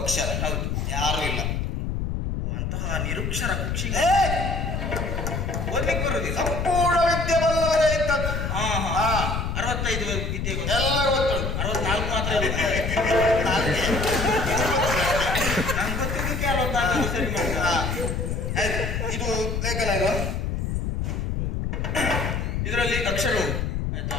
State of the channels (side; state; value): left; noise; rumble, 1 dB below the sound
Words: ಹೌದು ಯಾರು ಇಲ್ಲ ಓ, ಅಂತಹ ನಿರುಕ್ಷರ ಕುಕ್ಷಿ ಏ, ಓದ್ಲಿಕ್ಕೆ ಬರುದಿಲ್ಲ ಸಂಪೂರ್ಣ ವಿದ್ಯೆ ಬಲ್ಲವರೇ ಇದ್ದದ್ದು ಹಾ ಹಾ. ಹಾ 65 ವಿದ್ಯೆ ಗೊತ್ತು. ಎಲ್ಲ ಗೊತ್ತುಂಟು 64 ಮಾತ್ರ ನಾಲ್ಕೇ. ನನ್ಗೆ ಗೊತ್ತಿದ್ದಕ್ಕೆ 64 ಸರಿ ಮಾಡ್ತಾರೆ ಹಾ. ಆಯ್ತು ಇದು ಲೇಖನ ಇದು ಇದರಲ್ಲಿ ಅಕ್ಷರ ಉಂಟು ಆಯ್ತಾ